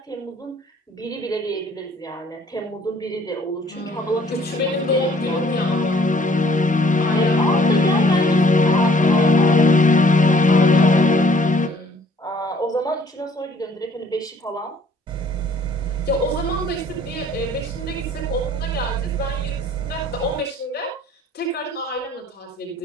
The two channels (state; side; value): normal; both; correlation 0.58